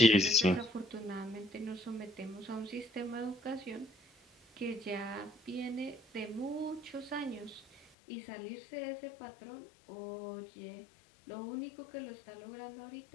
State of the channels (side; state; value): right; drops out; at 7.9 s